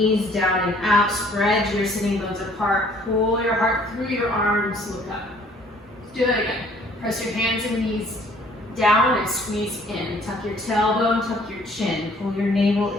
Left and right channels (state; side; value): normal; both; correlation 0.58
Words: down and out, spread your sitting bones apart, pull your heart through your arms, look up. Let's do that again. Press your hands and knees down and squeeze in. Tuck your tailbone, tuck your chin, pull your navel